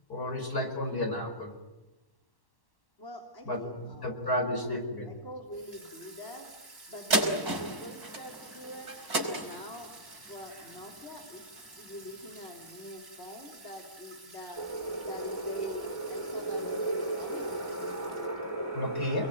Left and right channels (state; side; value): late; right; 1.1 ms